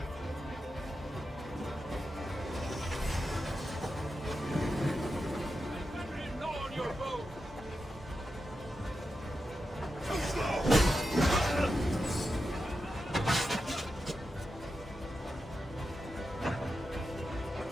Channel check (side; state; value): both; normal; correlation 0.89